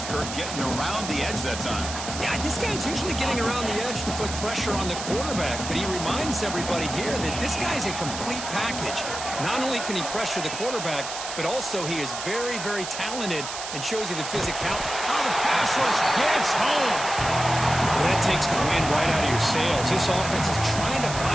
Kirk, getting around the edge that time. Yeah, this guy's usually getting around the edge to put pressure on the quarterback, but he reminds everybody here that this guy's a complete package. Not only can he pressure the quarterback, but also he is very, very talented and shows you the physicality. Oh, the pass rush gets home. Well, that takes the wind right out of your sails. This offense is trying to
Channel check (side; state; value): right; noise; hiss, 7 dB below the sound